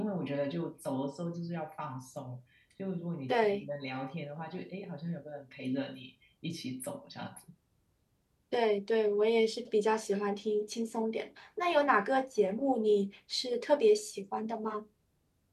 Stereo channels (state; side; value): identical; both; correlation 1.00